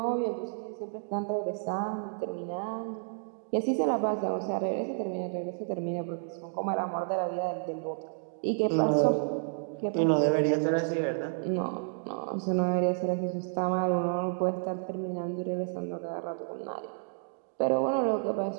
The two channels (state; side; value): silent; left; digital silence